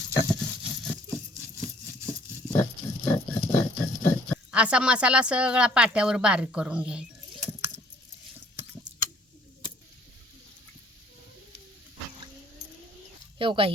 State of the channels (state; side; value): normal; both; correlation 0.59